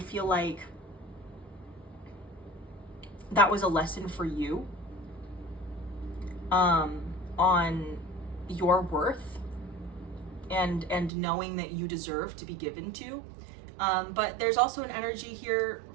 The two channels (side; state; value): left; drops out; at 11.1 s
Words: like that was a lesson for you on your worth and knowing that you deserve to be given to. But there's also an energy here